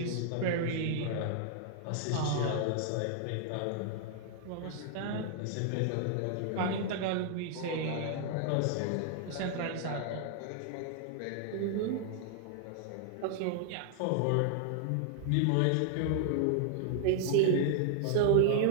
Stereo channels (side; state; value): both; different; correlation -0.01